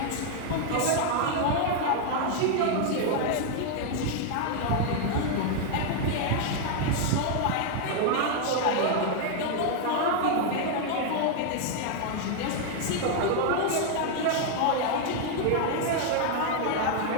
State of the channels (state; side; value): different; both; correlation 0.00